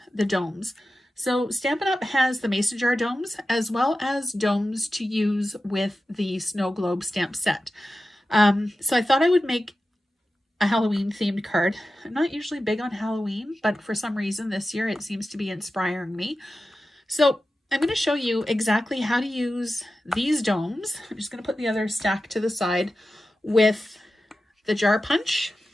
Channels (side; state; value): both; normal; correlation 0.93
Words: the domes. So Stampin' Up! Has the mason jar domes as well as domes to use with the snow globe stamp set. So I thought I would make a Halloween themed card. I'm not usually big on Halloween, but for some reason this year it seems to be inspiring me. So I'm going to show you exactly how to use these domes. I'm just going to put the other stack to the side with the jar punch